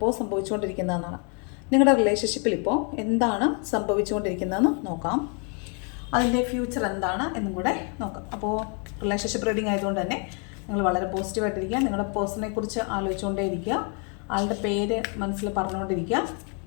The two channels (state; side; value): quieter; right; 38.2 dB